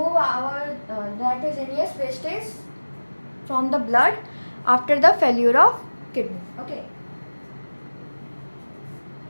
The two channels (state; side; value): inverted; both; correlation -1.00